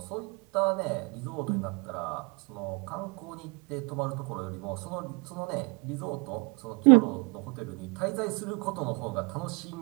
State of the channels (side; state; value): left; quieter; 30.9 dB